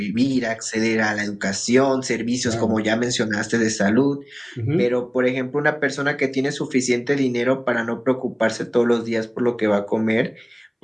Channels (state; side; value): identical; both; correlation 1.00